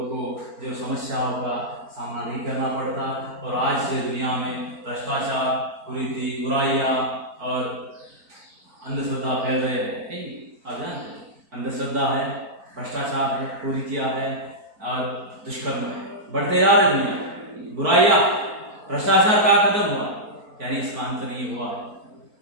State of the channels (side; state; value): left; late; 4.5 ms